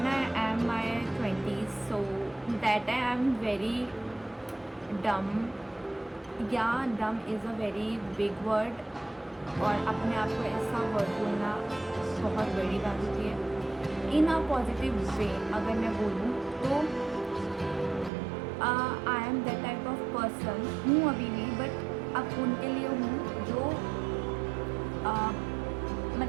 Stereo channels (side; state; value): left; drops out; at 18.1 s